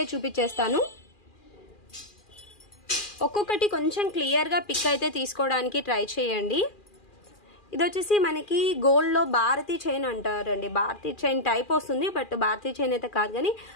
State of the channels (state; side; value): late; right; 2.4 ms